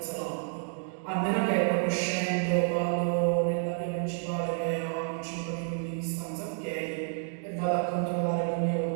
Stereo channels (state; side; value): silent; left; 58 dB below the other